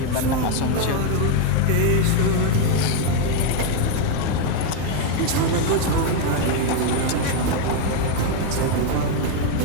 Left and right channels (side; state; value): both; different; correlation 0.01